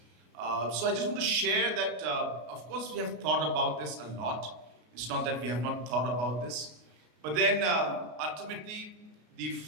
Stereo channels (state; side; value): late; left; 33 ms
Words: So I just want to share that, of course, we have thought about this a lot. It's not that we have not thought about this, but then ultimately the